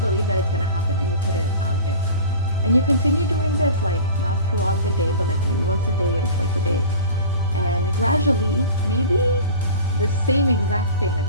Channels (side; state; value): both; inverted; correlation -0.37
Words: that it's gonna happen, and you put it out there. And you continue doing this, like not throughout the day, but like maybe once a day or twice a day. And gradually, maybe the same exact thing,